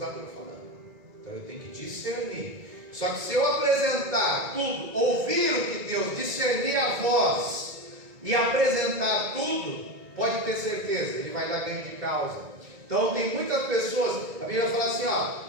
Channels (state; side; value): late; left; 1.9 ms